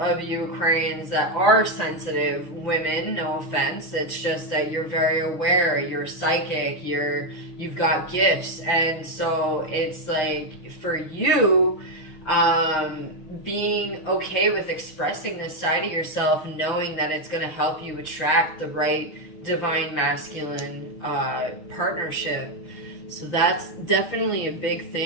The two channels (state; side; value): late; right; 6.4 ms